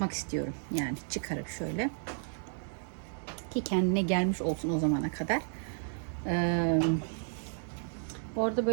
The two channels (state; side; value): silent; left; 56 dB below the other